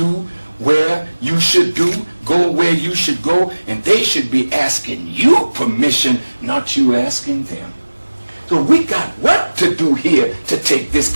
where you should do, go where you should go, and they should be asking you permission, not you asking them. So we got work to do here to take this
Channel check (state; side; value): inverted; both; correlation -1.00